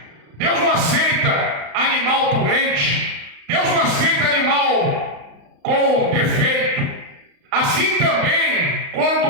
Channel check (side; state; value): left; late; 35 ms